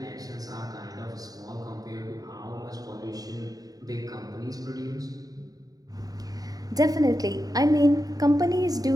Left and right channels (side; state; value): left; late; 0.18 ms